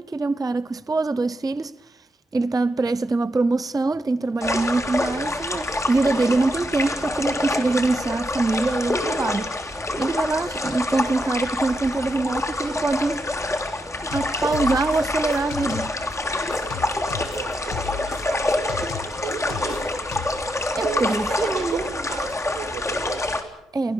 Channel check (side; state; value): both; normal; correlation 0.82